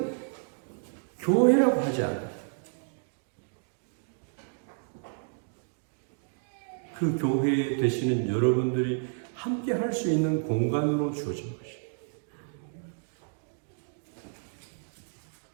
교회라고 하지 않아요. 그 교회에 되시는 여러분들이 함께 할 수 있는 공간으로 주어진 것이에요.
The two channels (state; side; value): silent; left; digital silence